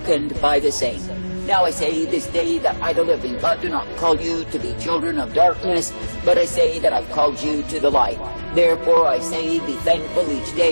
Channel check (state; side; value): inverted; both; correlation -1.00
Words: by the same. Now I say this day that I, the living God, do not call you to be children of darkness, but I say that I've called you to the light. Therefore I say, be thankful each